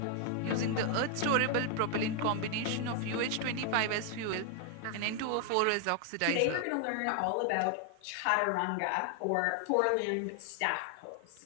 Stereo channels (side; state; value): both; different; correlation 0.00